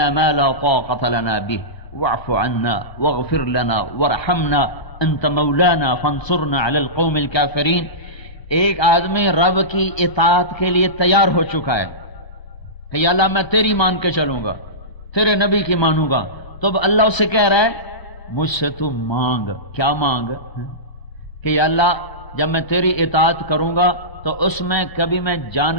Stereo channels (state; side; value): late; right; 1.0 ms